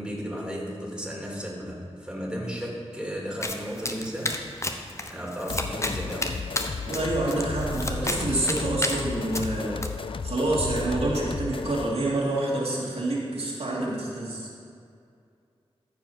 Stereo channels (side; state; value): both; normal; correlation 0.60